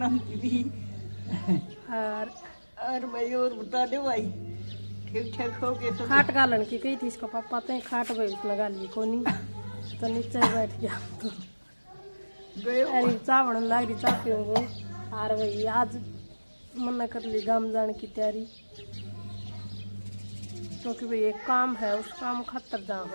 दीदी। और भाई और बता दो भाई, ठीक ठाक हो गए सब? खाट गालन की कही थी इसको पापा ते खाट भाई लगा ली को नहीं तो नीचे ही बैठ गया तो गए अरे चाय बनने लग रही। चाय पीऊंगा और भाई आज मना कर ली गाँव जाने की तैयारी क्योंकि भाई एक काम है, उस काम खातर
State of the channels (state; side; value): inverted; both; correlation -1.00